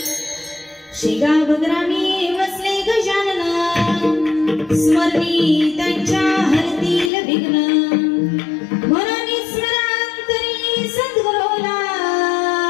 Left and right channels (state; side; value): drops out; right; at 7.1 s